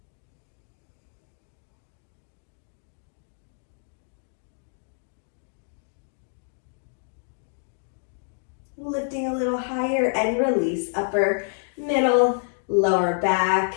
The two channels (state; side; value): silent; right; digital silence